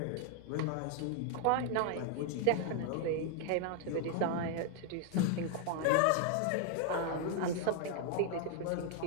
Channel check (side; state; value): both; different; correlation 0.00